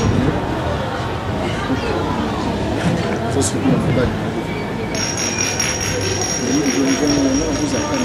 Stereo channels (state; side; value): identical; both; correlation 1.00